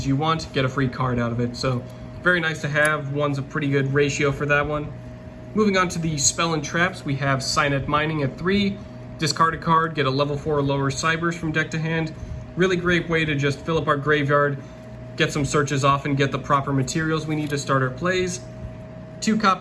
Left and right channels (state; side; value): identical; both; correlation 1.00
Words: you want, get a free card out of it. So very nice to have. 1's a pretty good ratio for that one. Moving on to the spell and traps, we have Signet Mining at 3. Discard a card, get a level 4 or lower Cyberse from deck to hand. Really great way to just fill up our graveyard, get some searches off, and get the proper materials we need to start our plays. 2